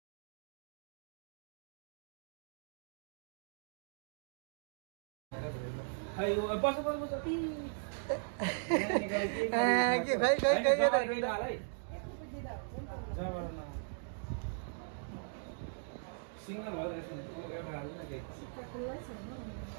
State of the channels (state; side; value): silent; left; digital silence